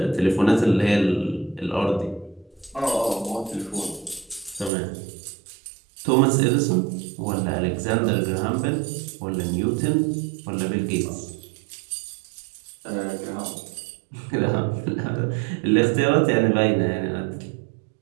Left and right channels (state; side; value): drops out; left; at 4.7 s